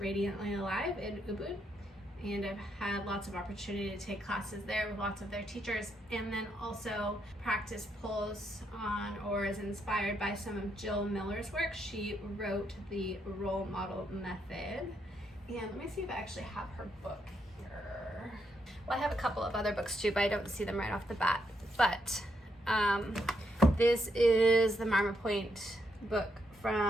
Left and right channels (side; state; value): both; normal; correlation 0.78